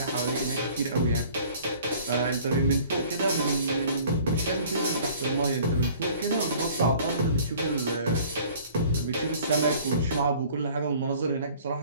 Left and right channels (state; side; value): inverted; both; correlation -0.51